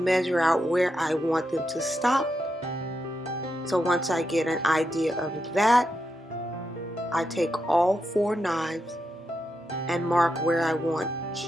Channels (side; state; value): both; normal; correlation 0.85